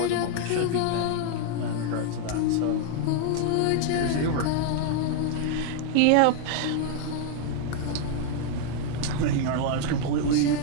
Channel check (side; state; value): both; different; correlation 0.00